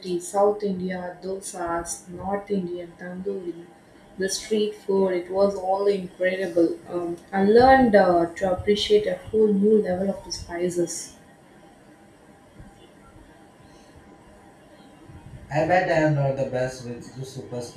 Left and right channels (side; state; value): both; identical; correlation 1.00